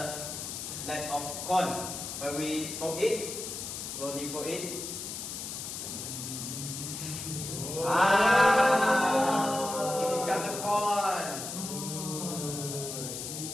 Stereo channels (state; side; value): noise; left; hiss, 6 dB below the sound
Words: net of corn. When we fold it, slowly fold it. It becomes the corn.